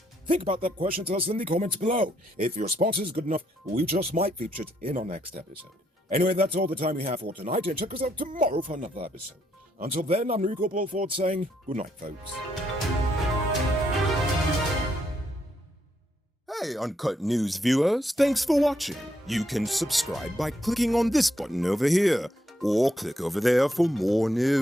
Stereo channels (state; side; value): normal; both; correlation 0.75